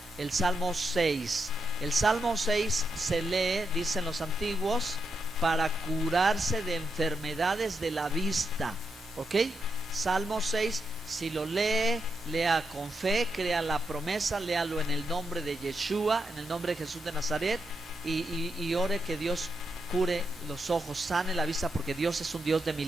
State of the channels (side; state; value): both; normal; correlation 0.83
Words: el Salmo 6. El Salmo 6 se lee, dicen los antiguos, para curarse de enfermedades de la vista. ¿Ok? Salmo 6, si lo lee, lea con fe, crea la promesa, léalo en el nombre de Yeshua, en el nombre de Jesús de Nazaret, y ore que Dios cure los ojos, sane la vista, porque Dios es un Dios de